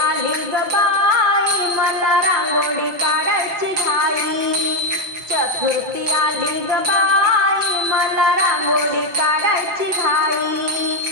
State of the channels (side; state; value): left; late; 5.8 ms